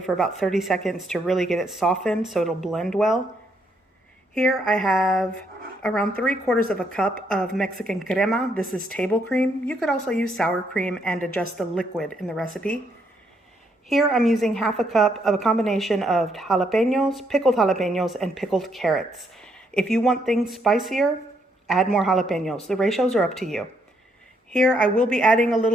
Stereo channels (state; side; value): normal; both; correlation 0.74